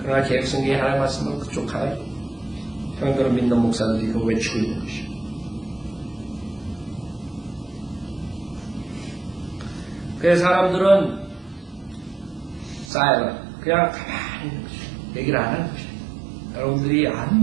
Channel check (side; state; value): left; drops out; at 12.9 s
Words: 개혁 성경이 하나님의 말씀을 그쪽 하나요. 형들을 믿는 목사들이 그걸 외치고 있는 것이요. 그래서 사람들은 쌓여가 그냥 가만히 있는 것이요. 얘기를 안 하는 것이요. 여러분들이